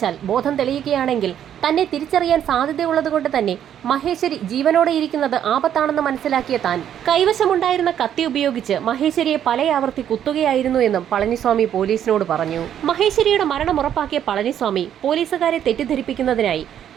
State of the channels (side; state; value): left; quieter; 10.0 dB